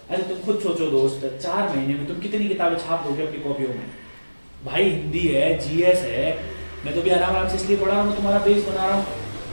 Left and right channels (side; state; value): both; inverted; correlation -1.00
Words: अरे तुम खुद सोचो दोस्त, 4 महीने में तुम कितनी किताबें छाप दोगे अपनी कॉपियों में? भाई हिंदी है, जीएस है, मैं तो भी आराम से इसलिए पढ़ा रहा हूँ, तुम्हारा बेस बना रहा हूँ।